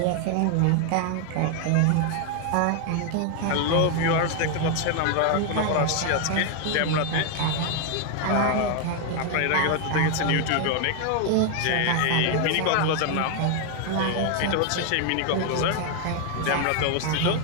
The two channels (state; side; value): different; both; correlation 0.01